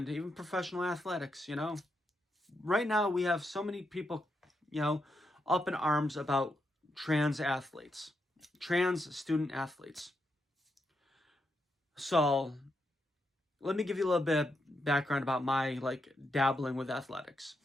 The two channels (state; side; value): normal; both; correlation 0.82